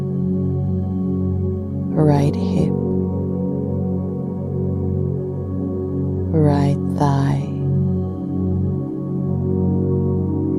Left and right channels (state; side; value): identical; both; correlation 1.00